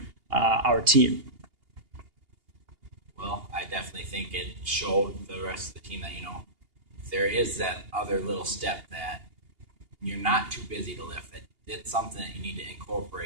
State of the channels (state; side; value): late; left; 2.8 ms